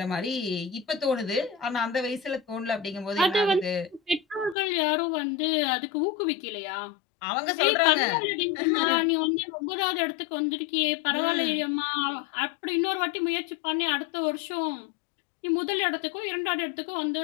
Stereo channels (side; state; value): right; drops out; at 4.5 s